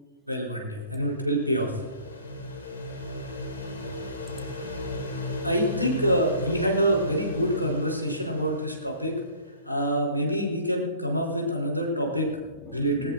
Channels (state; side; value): inverted; both; correlation -0.51